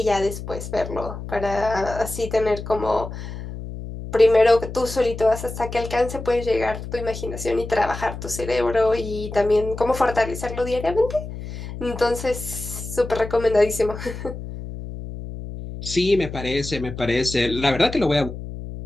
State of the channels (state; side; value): noise; left; hum, 9 dB below the sound